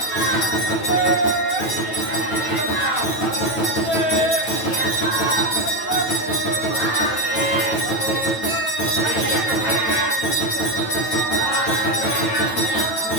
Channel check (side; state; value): right; late; 9.1 ms